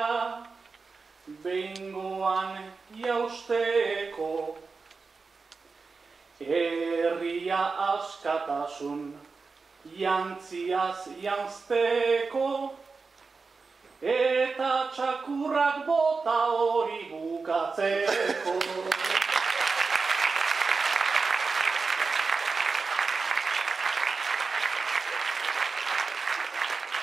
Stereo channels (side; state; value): left; quieter; 4.5 dB